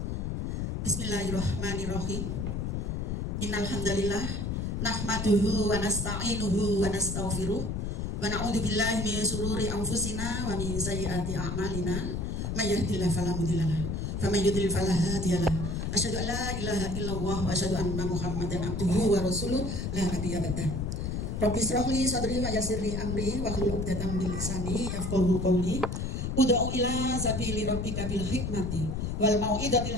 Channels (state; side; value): noise; left; rumble, 2 dB below the sound